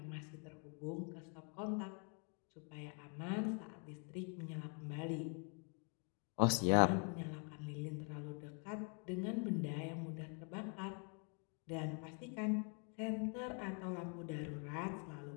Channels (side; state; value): right; quieter; 39.5 dB